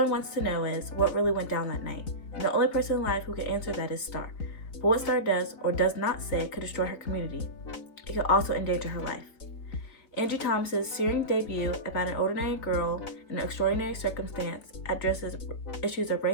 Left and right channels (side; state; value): right; late; 4.0 ms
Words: wants to know is what really went down that night. And the only person alive who can answer that is Star. But what Star does or does not say could destroy her community. It could also endanger her life. Angie Thomas's searing debut about an ordinary girl in an extraordinary circumstance addresses issues of